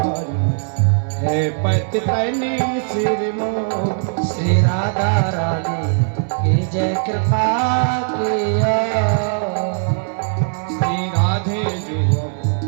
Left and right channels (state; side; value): silent; left; 66 dB below the other